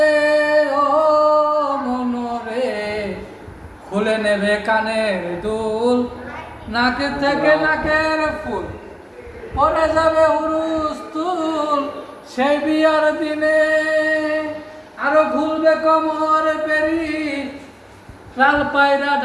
ও মনরে খুলে নেবে কানের দুল নাক থেকে নাকের ফুল পরে যাবে হুরুস তুল সেই বিয়ার দিনে আরো খুলবে কোমর পেরি লাল পায়রা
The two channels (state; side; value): identical; both; correlation 1.00